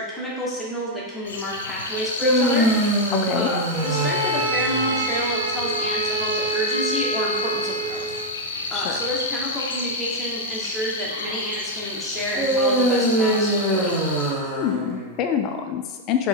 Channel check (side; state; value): both; normal; correlation 0.00